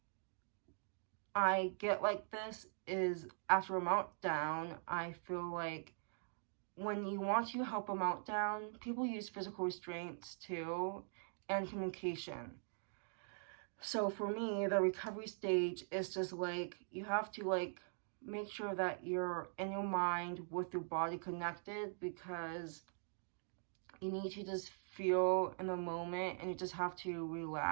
I get like this, is after a meltdown, I feel like when you want to help a meltdown, people use physical restraints too, and communication. So for me, the recovery stage is just like, you have to like make sure that you're in your mind with your body connected, because you need to just feel in the moment and you just have to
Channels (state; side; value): silent; left; digital silence